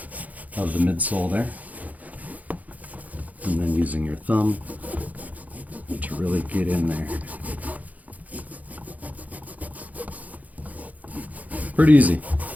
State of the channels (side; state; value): left; late; 0.077 ms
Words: of the midsole there, and then using your thumb to really get in there. Pretty easy.